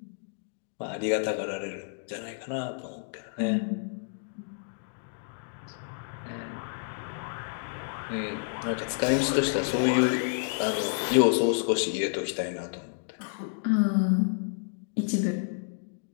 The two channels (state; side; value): silent; right; digital silence